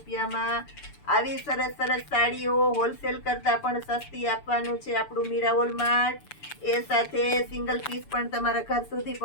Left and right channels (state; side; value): late; right; 6.9 ms